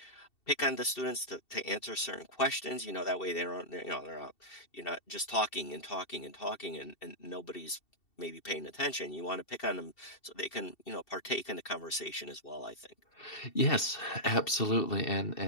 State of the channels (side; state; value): right; late; 2.7 ms